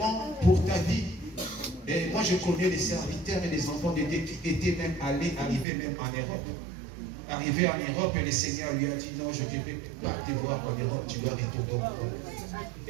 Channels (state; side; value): drops out; left; at 5.7 s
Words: pour ta vie. Et moi, je connais les serviteurs et les enfants de Dieu qui étaient même arrivés même en Europe. Arrivé en Europe, et le Seigneur lui a dit, non, je ne vais pas te voir en Europe, tu dois retourner au Maroc.